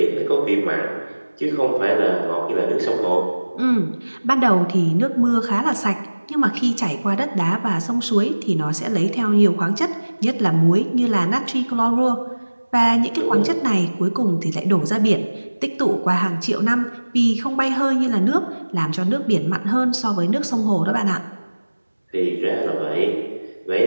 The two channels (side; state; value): both; inverted; correlation -1.00